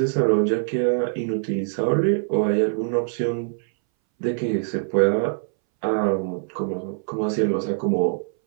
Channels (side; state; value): left; silent; 62 dB below the other